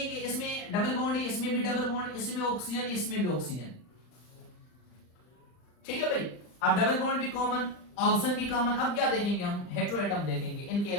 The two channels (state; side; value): late; right; 39 ms